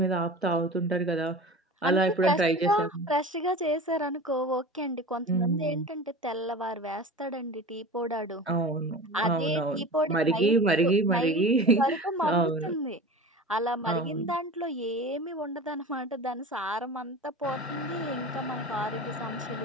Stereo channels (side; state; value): both; normal; correlation 0.34